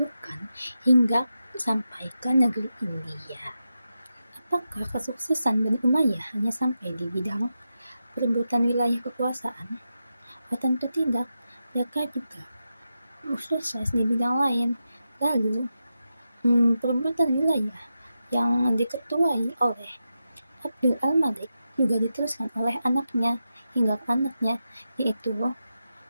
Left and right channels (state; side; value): inverted; both; correlation -0.89